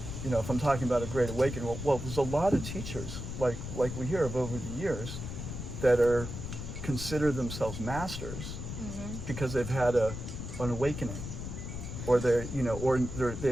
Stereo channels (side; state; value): left; noise; rumble, 7 dB below the sound